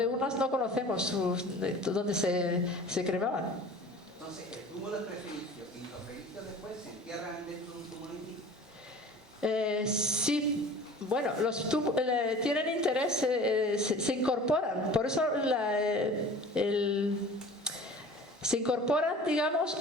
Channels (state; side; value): normal; both; correlation 0.43